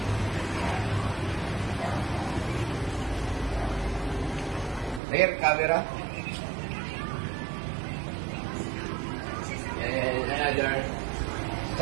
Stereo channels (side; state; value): left; drops out; at 5.0 s